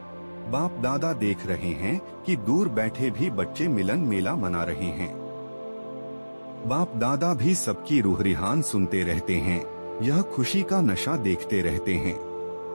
बाप दादा देख रहे हैं कि दूर बैठे भी बच्चे मिलन मेला मना रहे हैं। बाप दादा भी सबकी रूह रिहान सुनते रहते हैं, यह खुशी का नशा देखते रहते हैं।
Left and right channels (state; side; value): inverted; both; correlation -1.00